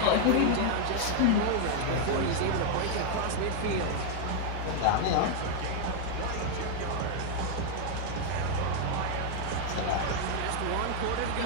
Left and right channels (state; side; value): different; both; correlation 0.00